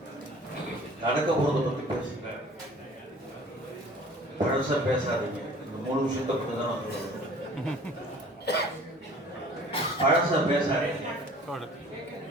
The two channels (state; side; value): normal; both; correlation 0.48